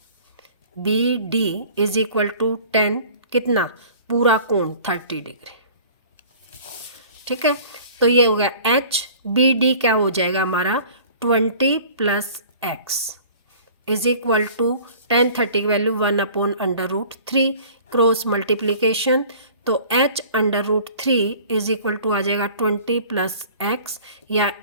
BD इज इक्वल टू 10 कितना पूरा कोण 30 डिग्री, ठीक है। तो ये हो गया HBD क्या हो जाएगा हमारा 20 + x इज इक्वल टू 10 30 की वैल्यू 1/√3 क्रॉस मल्टीप्लीकेशन, तो h/√3 इज इक्वल टू आ जाएगा 20 + x या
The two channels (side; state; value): both; inverted; correlation -0.47